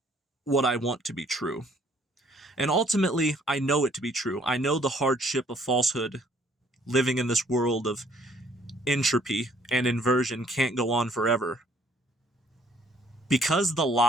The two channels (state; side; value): normal; both; correlation 0.62